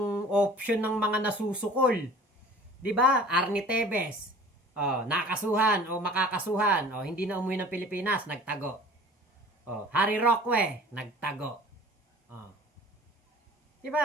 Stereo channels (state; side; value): normal; both; correlation 0.45